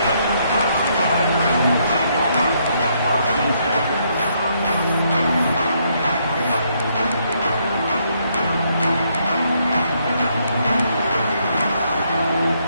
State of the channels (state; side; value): inverted; both; correlation -0.73